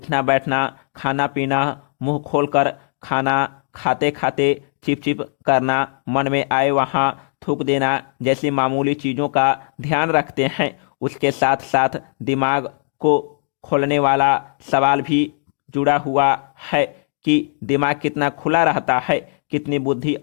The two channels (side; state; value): right; silent; digital silence